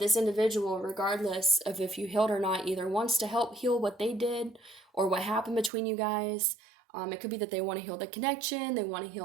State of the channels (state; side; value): drops out; left; at 5.7 s